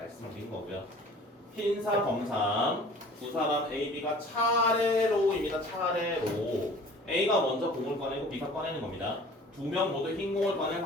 거고요. 흰사 검삼 두 사람 A, B가 차례로입니다. 차례로 A가 먼저 공을 꺼내고 B가 꺼내는 겁니다. 두 명 모두 흰 공을 꺼낼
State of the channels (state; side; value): normal; both; correlation 0.47